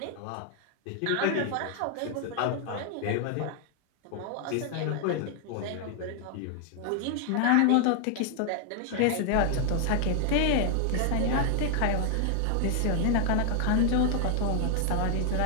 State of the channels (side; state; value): both; different; correlation 0.00